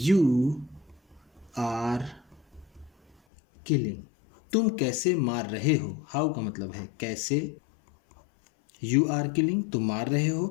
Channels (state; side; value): drops out; right; at 3.2 s